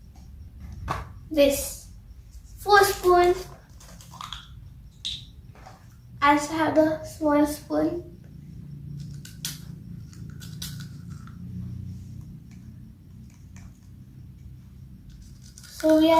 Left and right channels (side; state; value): both; identical; correlation 1.00